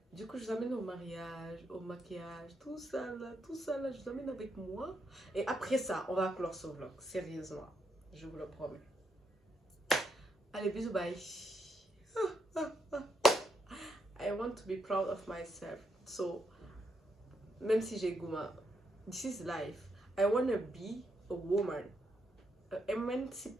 Du coup, je vous amène au mariage, au maquillage, tout ça là, je vous amène avec moi. Et après ça, on va clore ce vlog, sérieusement. Je vous le promets. Allez, bisous, bye. I want to be proud of myself. So, même si j'ai gourmand, this is life. I want to be a woman. An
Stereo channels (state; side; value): normal; both; correlation 0.79